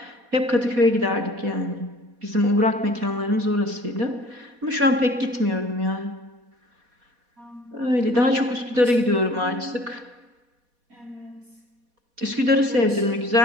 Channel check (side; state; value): left; late; 4.2 ms